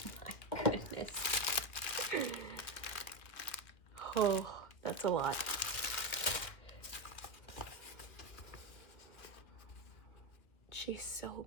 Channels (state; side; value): late; right; 2.1 ms